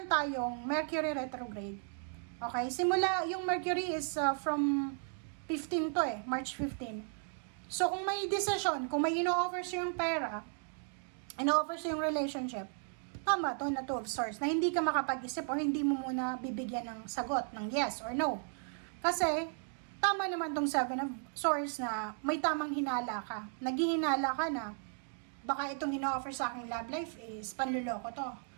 tayong Mercury retrograde. Okay? Simula, yung Mercury is from 15 to March 15. So, kung may decision, kung may ino-offer siyang pera, ino-offer siyang relationship, tama to na Two of Swords, na hindi ka makapag-isip o hindi mo muna bibigyan ng sagot, ng yes or no. Kasi, tama naman tong Seven of Swords na may tamang hinala ka. Naghihinala ka na baka itong ino-offer sa aking love life is panluloko to.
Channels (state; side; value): silent; left; 54 dB below the other